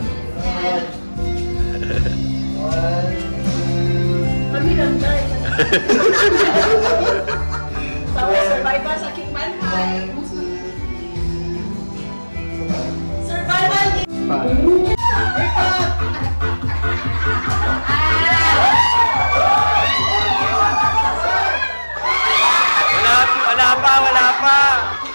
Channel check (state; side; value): inverted; both; correlation -1.00